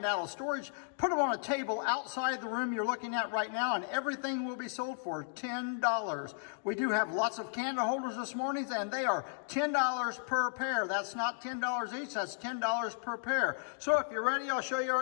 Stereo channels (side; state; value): right; silent; digital silence